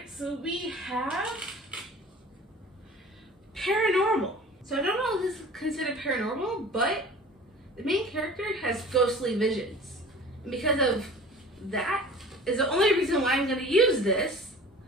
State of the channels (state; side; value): normal; both; correlation 0.42